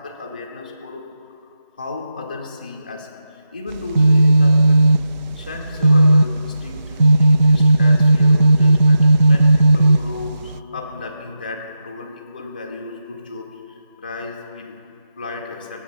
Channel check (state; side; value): inverted; both; correlation -0.88